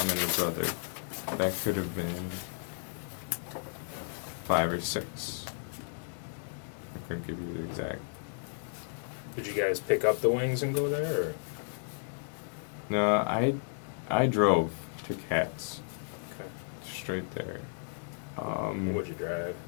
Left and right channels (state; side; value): silent; right; digital silence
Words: and her brother. That could have been 5 or 6. I couldn't give you the exact. Did you guys pick up the wings and go there, or? No, I drove to Kat's. Okay. Straight there. What'd you drive?